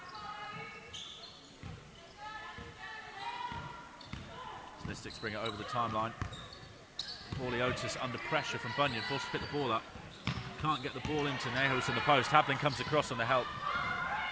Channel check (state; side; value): identical; both; correlation 1.00